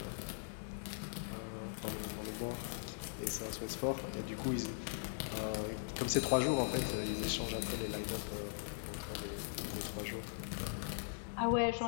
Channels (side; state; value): right; silent; digital silence